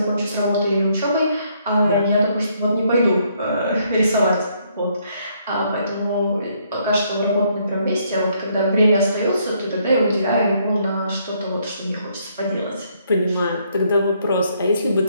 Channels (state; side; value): inverted; both; correlation -0.70